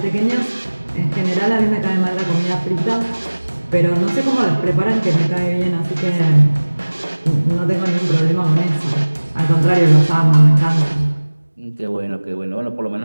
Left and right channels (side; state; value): both; inverted; correlation -1.00